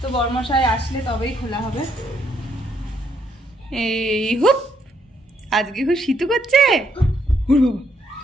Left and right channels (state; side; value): normal; both; correlation 0.72